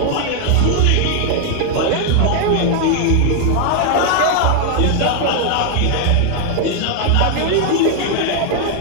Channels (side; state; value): both; different; correlation 0.00